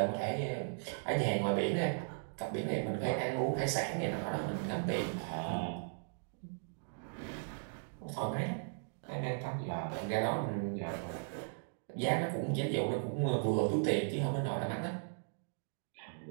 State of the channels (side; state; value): left; silent; digital silence